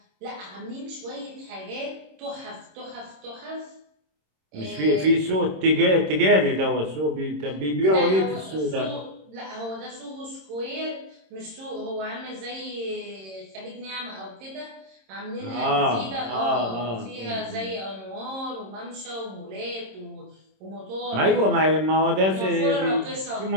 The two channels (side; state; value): left; late; 26 ms